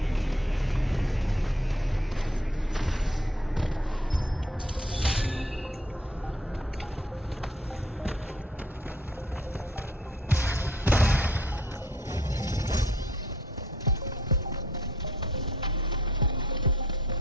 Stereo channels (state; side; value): normal; both; correlation 0.59